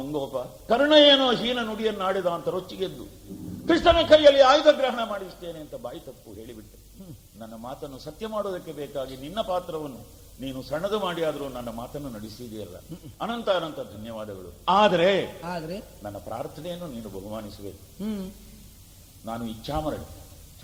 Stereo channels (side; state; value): both; identical; correlation 1.00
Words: ಕರ್ಣ ಏನೋ ಹೀನ ನುಡಿಯನ್ನಾಡಿದ ಅಂತ ರೊಚ್ಚಿಗೆದ್ದು ಕೃಷ್ಣನ ಕೈಯಲ್ಲಿ ಆಯುಧ ಗ್ರಹಣ ಮಾಡಿಸ್ತೇನೆ ಅಂತ ಬಾಯಿ ತಪ್ಪು ಹೇಳಿಬಿಟ್ಟೆ. ನನ್ನ ಮಾತನ್ನು ಸತ್ಯ ಮಾಡೋದಕ್ಕೆ ಬೇಕಾಗಿ ನಿನ್ನ ಪಾತ್ರವನ್ನು ನೀನು ಸಣ್ಣದು ಮಾಡಿ ಆದರೂ ನನ್ನ ಮಾತನ್ನು ನಡೆಸಿದೆಯಲ್ಲ, ಅನಂತ ಅನಂತ ಧನ್ಯವಾದಗಳು. ಆದರೆ ನನ್ನ ಪ್ರಾರ್ಥನೆಯನ್ನು ನೀನು ಬಹುಮಾನಿಸಬೇಕು. ನಾನು ಇಚ್ಛಾಮರಣಿ,